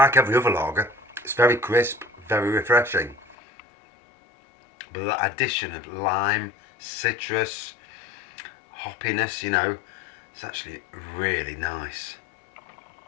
every other lager, it's very crisp, very refreshing. But that addition of lime, citrus, hoppiness, you know, it's actually really nice.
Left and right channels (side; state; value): right; drops out; at 3.4 s